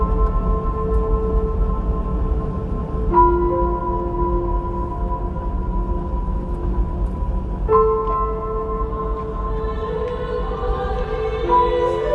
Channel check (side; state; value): both; identical; correlation 1.00